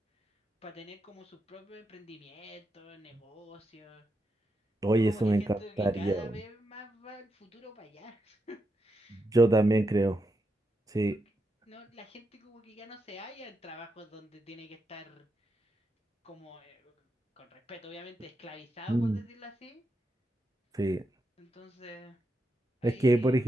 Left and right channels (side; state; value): both; normal; correlation 0.84